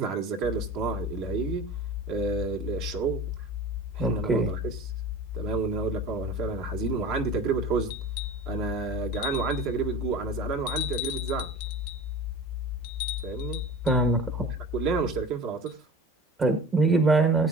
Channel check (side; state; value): both; normal; correlation 0.37